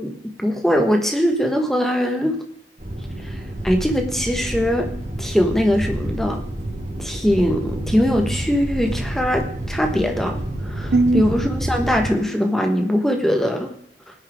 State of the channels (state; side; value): normal; both; correlation 0.86